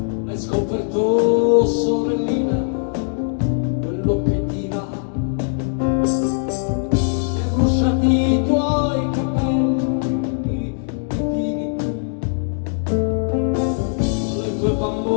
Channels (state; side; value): silent; right; digital silence